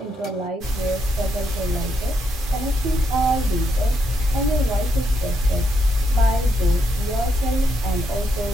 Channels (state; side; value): normal; both; correlation 0.79